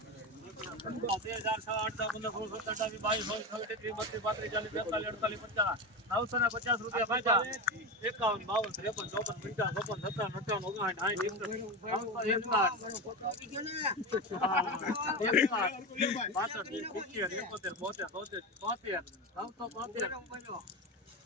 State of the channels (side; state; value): both; normal; correlation 0.19